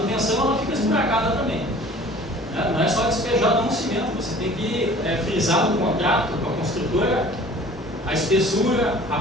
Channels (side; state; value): both; normal; correlation 0.47